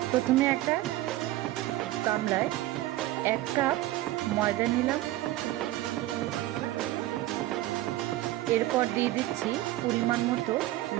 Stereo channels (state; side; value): quieter; left; 15.9 dB